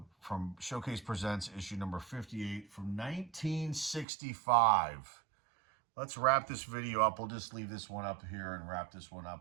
Showcase Presents, issue number 58 from 1965. Let's wrap this video up. We'll just leave this one up here and wrap this one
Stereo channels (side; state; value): left; drops out; at 4.0 s